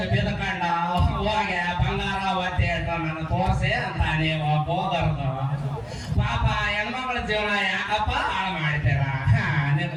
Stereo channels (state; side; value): identical; both; correlation 1.00